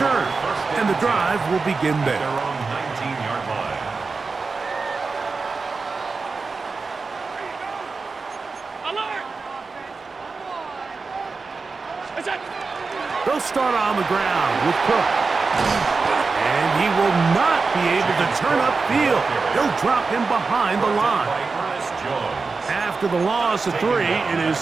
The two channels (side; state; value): left; quieter; 4.3 dB